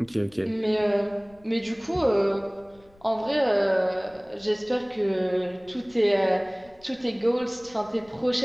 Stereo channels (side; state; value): left; noise; rumble, 29 dB below the sound